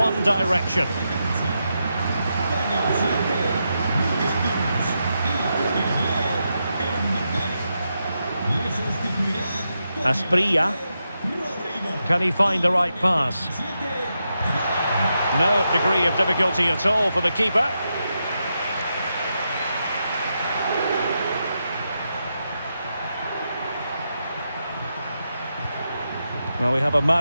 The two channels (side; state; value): both; inverted; correlation -0.86